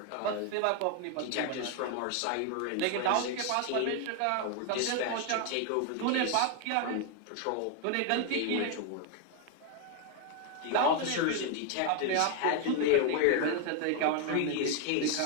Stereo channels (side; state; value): both; different; correlation 0.01